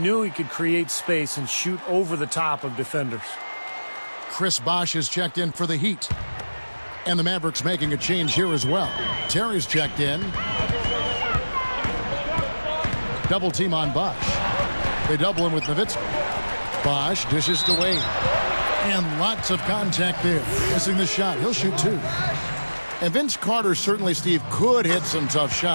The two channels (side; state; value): both; inverted; correlation -1.00